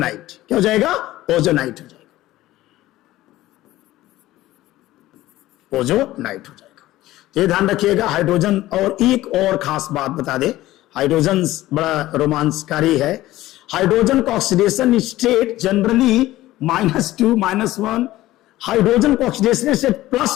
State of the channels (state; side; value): quieter; right; 16.1 dB